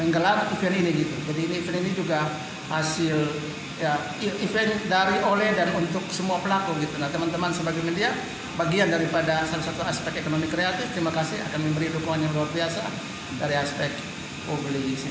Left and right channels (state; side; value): identical; both; correlation 1.00